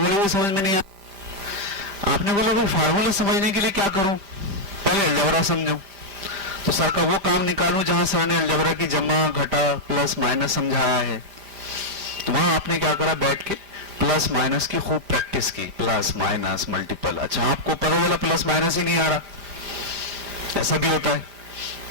بھی سمجھ میں نہیں آ. آپ نے بولا بھائی فارمولے سمجھنے کے لیے کیا کروں، پہلے الجبرا سمجھو. تو سر کا وہ کام نکالوں جہاں سر نے الجبرا کی جمع، گھٹا، پلس مائنس سمجھایا ہے. وہاں آپ نے کیا کرا، بیٹھ کے پلس مائنس کی خوب پریکٹس کی، پلس مائنس ملٹیپل. اچھا آپ کو پتا چلا پلس مائنس ہی نہیں آ رہا، ایسا بھی ہوتا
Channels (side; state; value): left; late; 5.0 ms